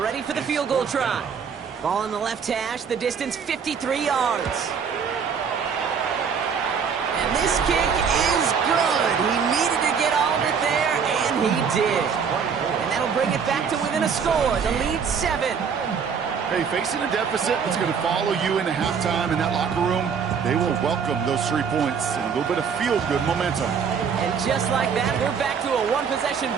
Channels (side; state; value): left; quieter; 6.5 dB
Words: for the field goal try. Ball in the left hash, the distance 53 yards. And this kick is good. He needed to get all of it there, and he did. And that'll bring it back to within a score. The lead 7. Hey, facing a deficit that's going to follow you into halftime in that locker room, they will welcome those 3 points and a little bit of feel-good momentum. And just like that, we're back to a one-possession